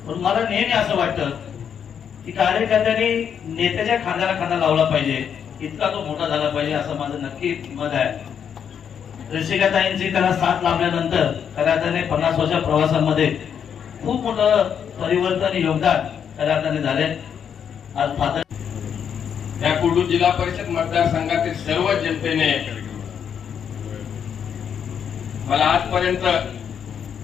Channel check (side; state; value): right; quieter; 7.9 dB